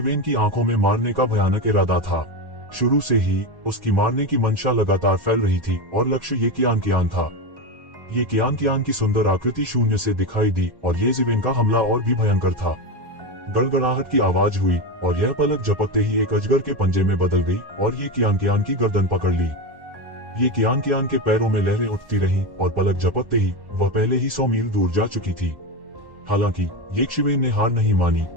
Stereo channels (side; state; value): left; late; 1.1 ms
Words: की आंखों में मारने का भयानक इरादा था। शुरू से ही उसकी मारने की मंशा लगातार फैल रही थी और लक्ष्य ये कियान था। ये कियान की सुंदर आकृति शून्य से दिखाई दी और ये जिवेन का हमला और भी भयंकर था। गड़गड़ाहट की आवाज हुई और यह पलक झपकते ही एक अजगर के पंजे में बदल गई और ये कियान की गर्दन पकड़ ली। ये कियान के पैरों में लहरें उठती रहीं और पलक झपकते ही वह पहले ही 100 मील दूर जा चुकी थी। हालांकि ये शिवेन ने हार नहीं मानी